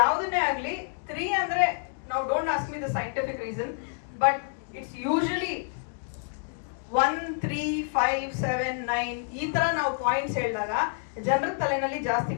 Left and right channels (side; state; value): right; silent; 59 dB below the other